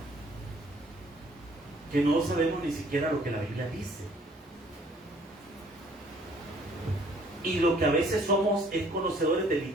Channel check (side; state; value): both; normal; correlation 0.59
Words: Que no sabemos ni siquiera lo que la Biblia dice. Y lo que a veces somos es conocedores de